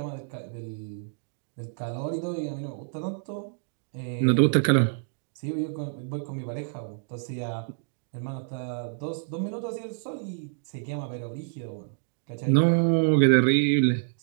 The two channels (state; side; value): silent; left; digital silence